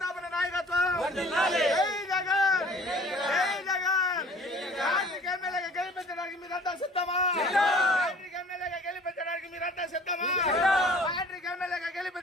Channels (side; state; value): both; normal; correlation 0.49